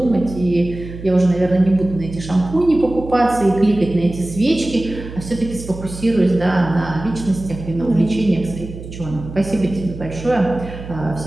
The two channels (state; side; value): noise; right; hum, 12 dB below the sound